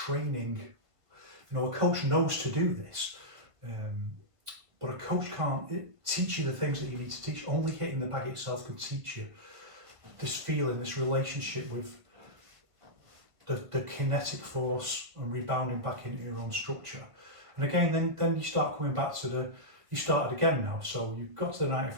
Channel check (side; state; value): left; late; 1.5 ms